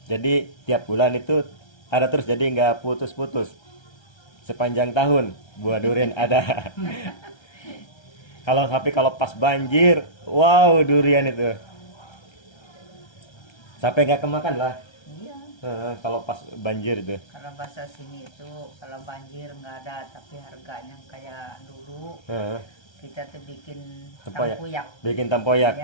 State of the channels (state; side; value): late; right; 1.3 ms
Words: Jadi tiap bulan itu ada terus, jadi nggak putus-putus. Sepanjang tahun buah durian ada. Kalau pas banjir, wow durian itu. Sampai nggak kemakan lah. Iya. Kalau pas banjir itu. Kalau bahasa sini itu kalau banjir nggak ada, tapi harganya kayak dulu. Kita tuh bikin tempoyak. Bikin tempoyak.